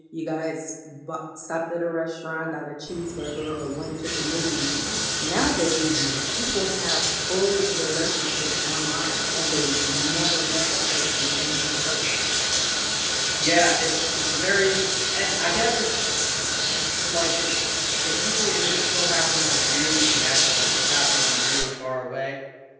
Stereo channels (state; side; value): identical; both; correlation 1.00